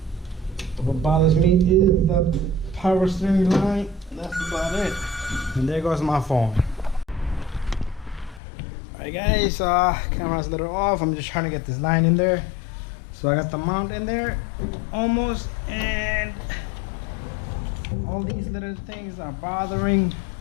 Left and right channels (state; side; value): drops out; right; at 8.4 s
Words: What bothers me is the power steering line. That's about it. And there goes my phone. Alright, guys, camera's a little off. I'm just trying to get this line in there. So I got the mount in there almost, and all these little things are bothering,